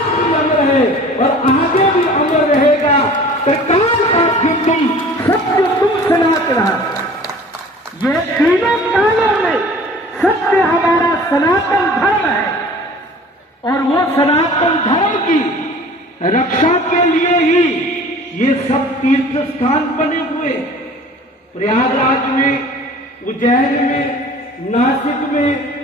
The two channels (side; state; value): both; normal; correlation 0.45